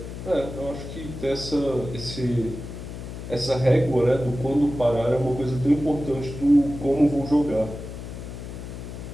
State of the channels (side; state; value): left; noise; hum, 10 dB below the sound